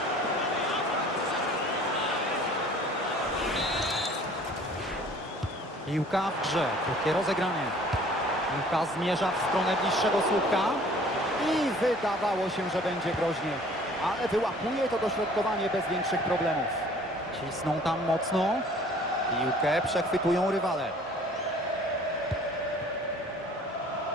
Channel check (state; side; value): normal; both; correlation 0.52